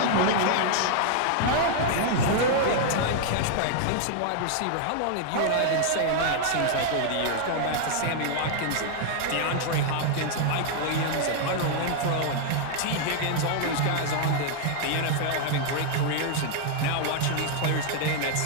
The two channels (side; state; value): both; different; correlation -0.01